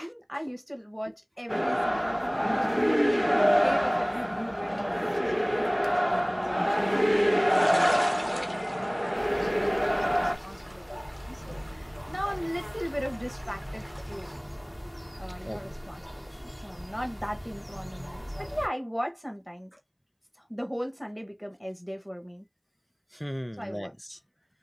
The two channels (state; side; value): identical; both; correlation 1.00